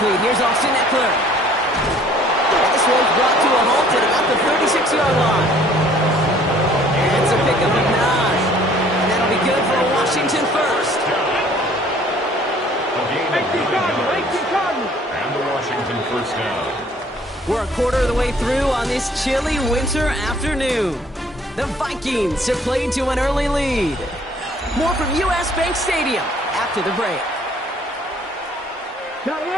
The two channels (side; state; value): both; normal; correlation 0.57